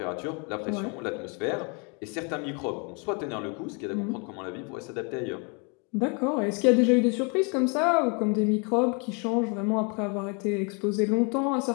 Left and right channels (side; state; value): right; quieter; 34.4 dB